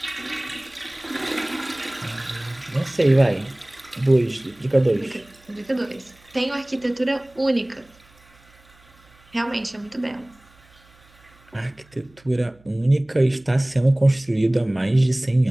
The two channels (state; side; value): noise; right; hum, 29 dB below the sound